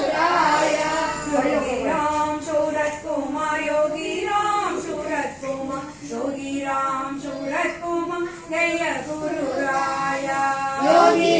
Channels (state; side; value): identical; both; correlation 1.00